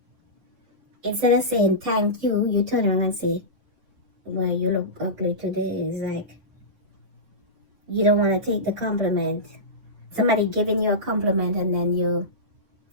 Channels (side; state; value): left; late; 5.7 ms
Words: Instead of saying thank you, you turn around and say, well, you look ugly today. It's like you don't want to take the compliment. Somebody giving you a compliment and then you